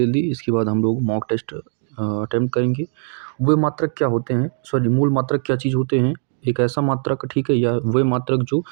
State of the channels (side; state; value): left; silent; digital silence